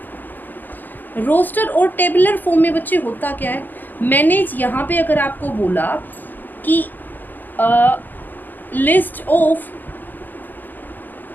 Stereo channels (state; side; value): late; right; 0.088 ms